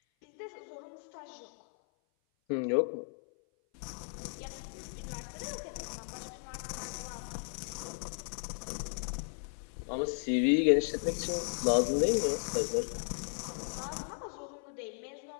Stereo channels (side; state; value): right; silent; 54 dB below the other